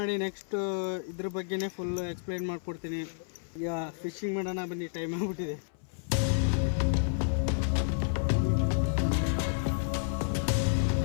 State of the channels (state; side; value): silent; right; 58 dB below the other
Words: ನೆಕ್ಸ್ಟ್ ಇದ್ರ ಬಗ್ಗೆನೇ ಫುಲ್ಲು ಎಕ್ಸ್ಪ್ಲೈನ್ ಮಾಡಿಕೊಡ್ತೀನಿ. ಈಗ ಫಿಶಿಂಗ್ ಮಾಡೋಣ ಬನ್ನಿ, ಟೈಮ್ ಆಗ್ಬಿಟ್ಟಿದೆ.